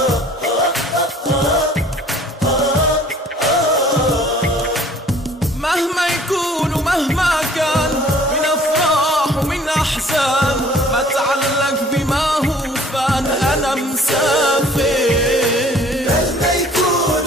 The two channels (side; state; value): both; normal; correlation 0.53